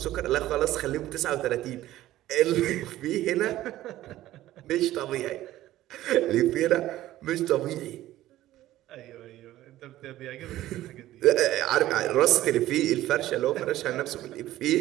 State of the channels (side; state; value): left; quieter; 14.8 dB